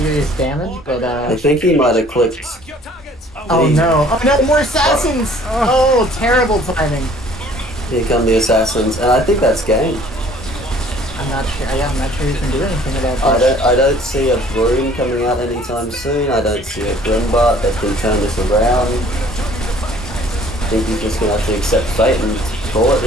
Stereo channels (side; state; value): both; normal; correlation 0.55